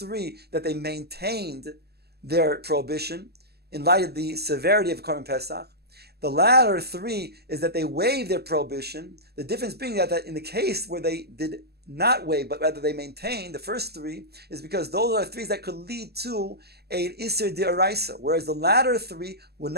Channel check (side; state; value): left; late; 0.47 ms